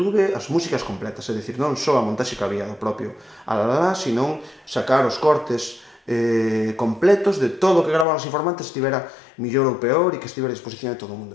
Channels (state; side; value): drops out; right; at 8.1 s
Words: as músicas completas, é dicir, non só a montaxe que había do propio Alalá, sino sacar os cortes completos de todo o que graban os informantes estivera millor ou peor e que estivera a disposición de todo o